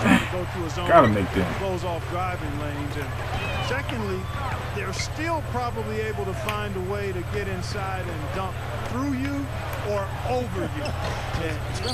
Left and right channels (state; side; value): identical; both; correlation 1.00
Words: to go through a zone. Gotta make them. Close off driving lanes. And secondly, they're still probably able to find a way to get inside and dunk through you or over you. It's kind